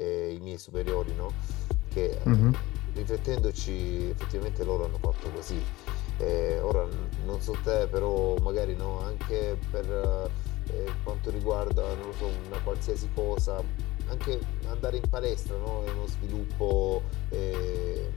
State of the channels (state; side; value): quieter; right; 19.3 dB